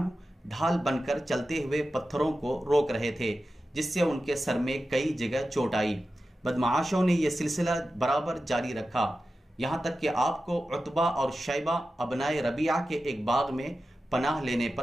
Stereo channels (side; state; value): both; normal; correlation 0.93